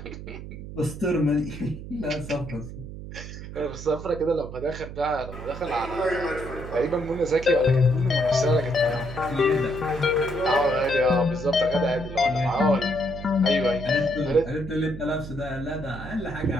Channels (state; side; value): noise; right; hum, 11 dB below the sound